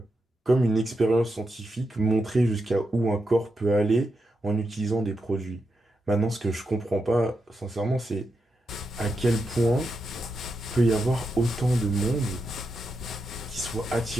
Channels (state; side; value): normal; both; correlation 0.86